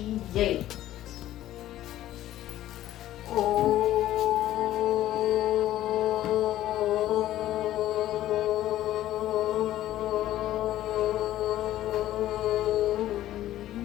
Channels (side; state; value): right; quieter; 13.7 dB